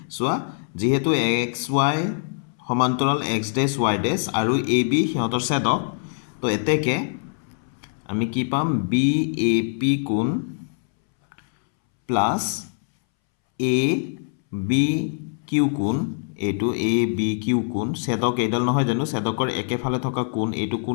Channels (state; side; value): silent; right; 63 dB below the other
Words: চোৱা যেহেতু XY সমান্তৰাল X', Y' আৰু AB সিহঁতৰ ছেদক তো এতেকে আমি কি পাম BAP কোণ প্লাস ABQ কোণ এইটো ABQ কোণ ছেদক এইডাল নহয় জানো ছেদকৰ একেফালে থকা কোণ এইটো কোণ